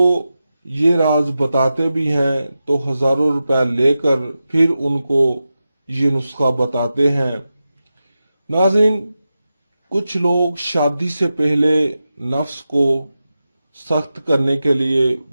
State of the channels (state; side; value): inverted; both; correlation -0.92